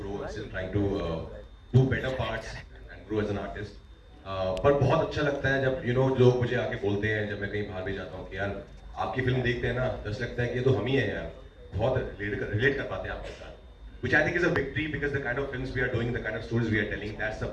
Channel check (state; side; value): identical; both; correlation 1.00